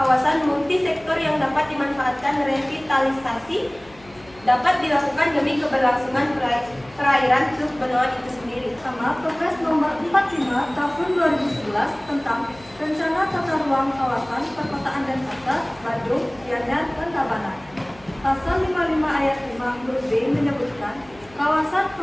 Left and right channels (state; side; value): noise; left; hum, 24 dB below the sound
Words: multisektor yang dapat dimanfaatkan revitalisasi dapat dilakukan demi keberlangsungan perairan Teluk Benua itu sendiri. Sama Perpres Nomor 45 Tahun 2011 tentang Rencana Tata Ruang Kawasan Perkotaan Denpasar, Badung, Gianyar, dan Tabanan. Pasal 55 ayat 5 huruf B menyebutkan kawasan